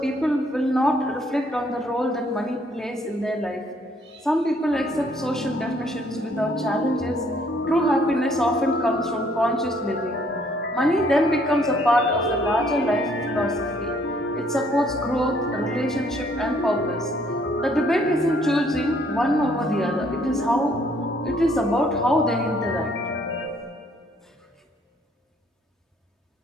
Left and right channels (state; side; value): normal; both; correlation 0.64